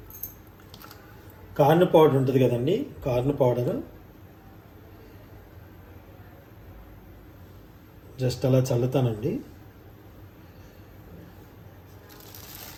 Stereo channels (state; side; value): identical; both; correlation 1.00